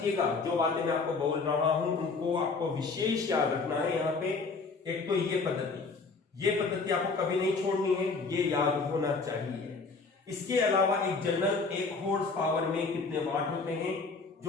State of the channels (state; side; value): quieter; right; 4.3 dB